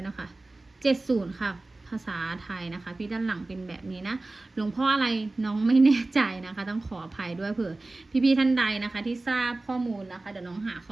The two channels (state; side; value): quieter; left; 3.0 dB